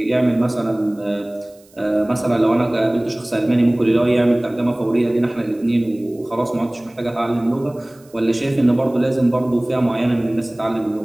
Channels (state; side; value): noise; right; hiss, 29 dB below the sound